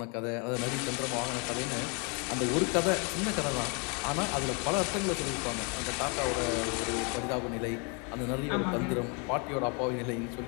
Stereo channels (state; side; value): quieter; right; 34.5 dB